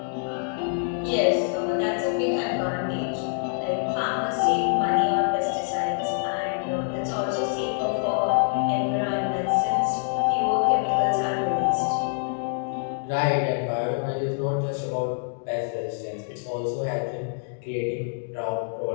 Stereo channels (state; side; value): silent; right; digital silence